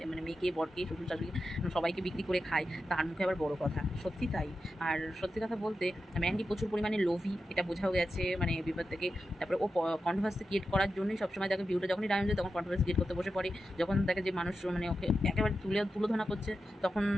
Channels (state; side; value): normal; both; correlation 0.90